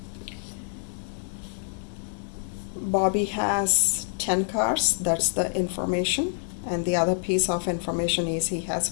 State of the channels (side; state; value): right; silent; 58 dB below the other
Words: Bobby has 10 cars, that's the information, and the other piece of information is he has